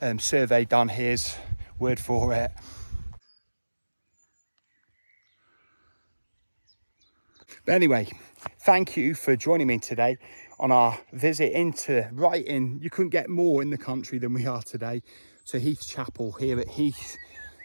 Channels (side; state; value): both; inverted; correlation -1.00